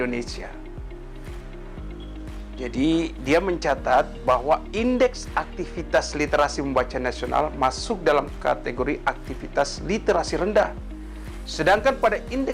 Jadi, dia mencatat bahwa indeks aktivitas literasi membaca nasional masuk dalam kategori aktivitas literasi rendah. Sedangkan pada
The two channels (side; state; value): both; identical; correlation 1.00